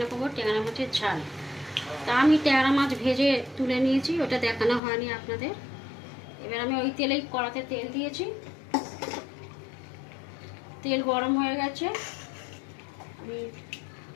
করবো ট্যাংরা মাছের ঝাল। তা আমি ট্যাংরা মাছ ভেজে তুলে নিয়েছি, ওটা দেখানো হয়নি আপনাদের। এবার আমি ওই তেলেই কড়াতে তেল দিয়েছি, তেল গরম হয়ে গেছে। আমি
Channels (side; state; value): right; drops out; at 4.8 s